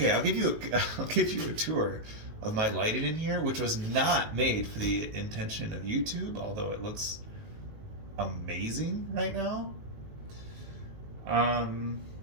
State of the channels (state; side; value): late; left; 19 ms